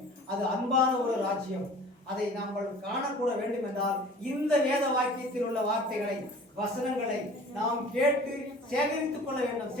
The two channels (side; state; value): both; normal; correlation 0.45